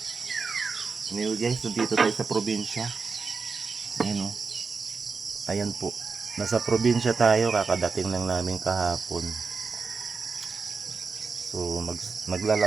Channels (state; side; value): quieter; left; 4.9 dB